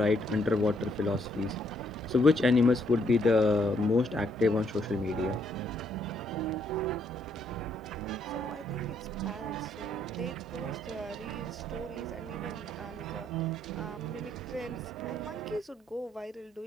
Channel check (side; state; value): both; normal; correlation 0.71